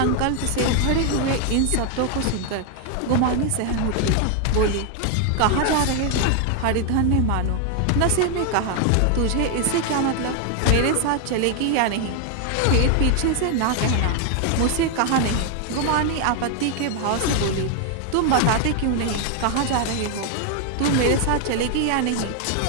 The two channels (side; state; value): both; different; correlation 0.01